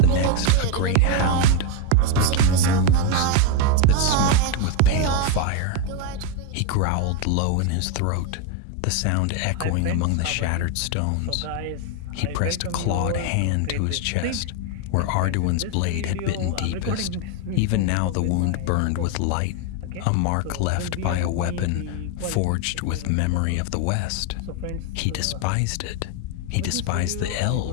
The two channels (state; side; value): different; both; correlation 0.01